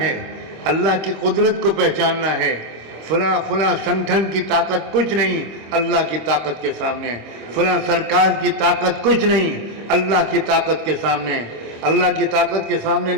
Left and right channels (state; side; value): late; left; 26 ms